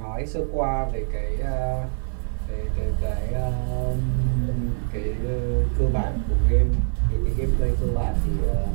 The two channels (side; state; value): left; silent; digital silence